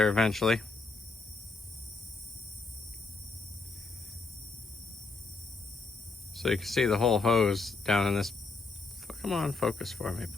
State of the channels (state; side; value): quieter; right; 3.8 dB